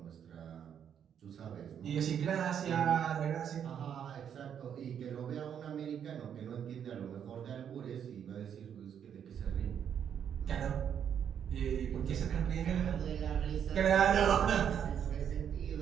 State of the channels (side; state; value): left; quieter; 8.6 dB